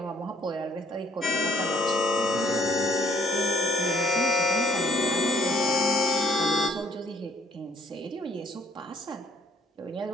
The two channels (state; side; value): normal; both; correlation 0.65